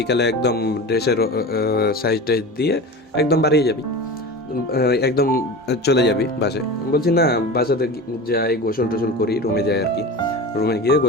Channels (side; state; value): both; normal; correlation 0.31